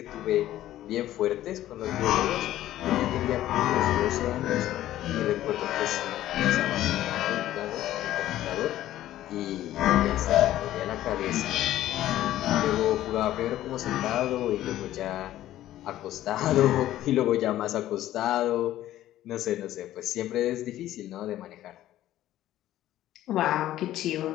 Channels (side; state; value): right; quieter; 13.6 dB